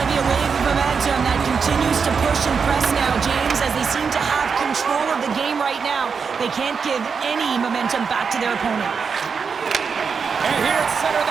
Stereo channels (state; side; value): quieter; left; 5.8 dB